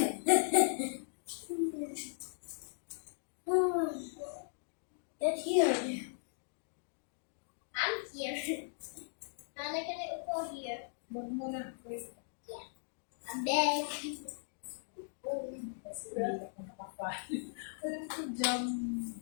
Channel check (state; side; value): silent; right; digital silence